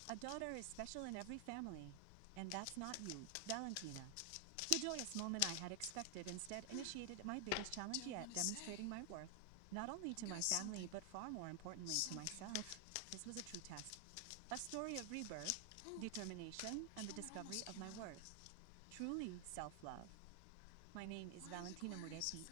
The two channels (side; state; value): both; different; correlation 0.00